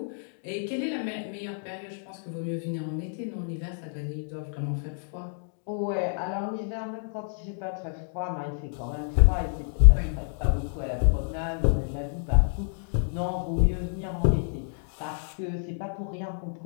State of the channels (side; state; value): right; silent; digital silence